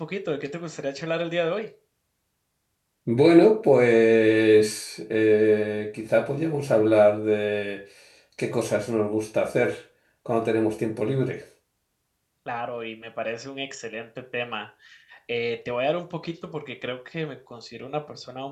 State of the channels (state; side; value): identical; both; correlation 1.00